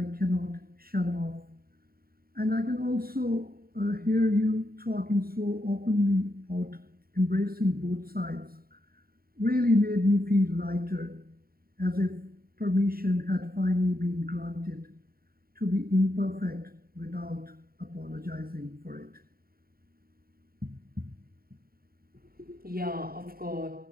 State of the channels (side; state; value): left; late; 0.43 ms